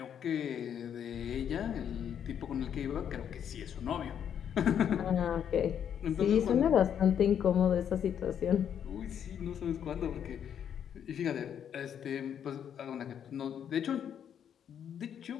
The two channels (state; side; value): quieter; right; 8.8 dB